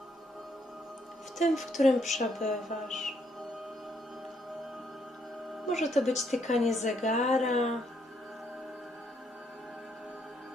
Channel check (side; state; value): both; normal; correlation 0.72